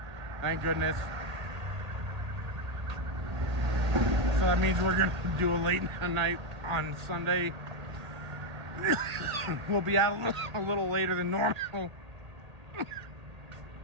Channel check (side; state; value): left; late; 1.9 ms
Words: Thank goodness. So that means we're gonna do a late night on Sunday. We'll be out a little later than normal.